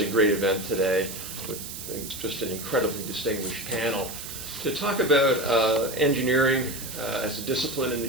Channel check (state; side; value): noise; right; hiss, 9 dB below the sound